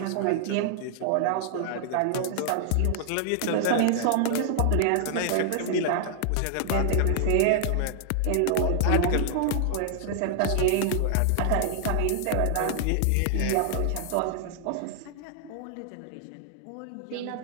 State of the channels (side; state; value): both; different; correlation -0.01